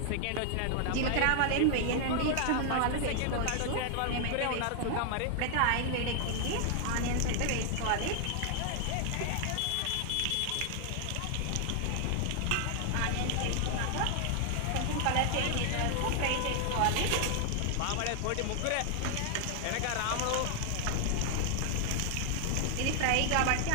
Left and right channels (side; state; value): both; different; correlation 0.00